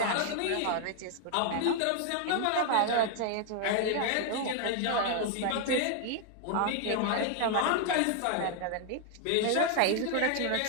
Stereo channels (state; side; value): different; both; correlation 0.00